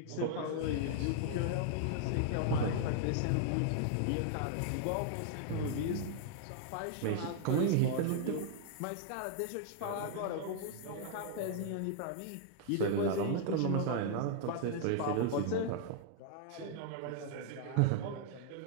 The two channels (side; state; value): both; different; correlation -0.01